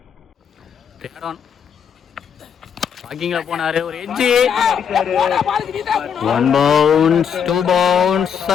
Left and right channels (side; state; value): right; quieter; 7.5 dB